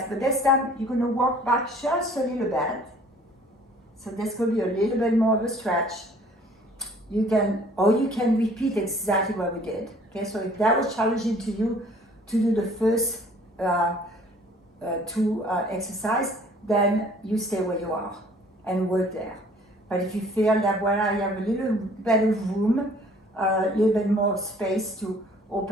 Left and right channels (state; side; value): normal; both; correlation 0.54